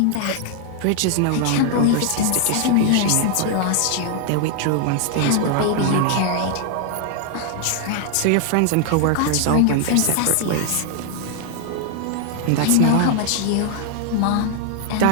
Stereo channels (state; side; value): different; both; correlation 0.00